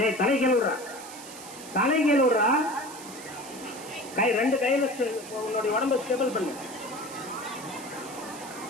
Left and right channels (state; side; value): noise; right; hiss, 15 dB below the sound